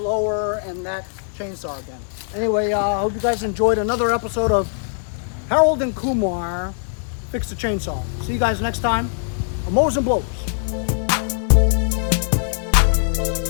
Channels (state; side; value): silent; right; digital silence